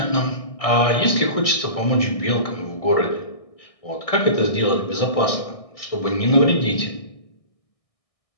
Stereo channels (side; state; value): right; late; 1.6 ms